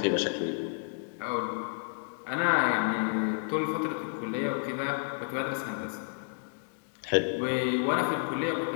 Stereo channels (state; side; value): silent; right; digital silence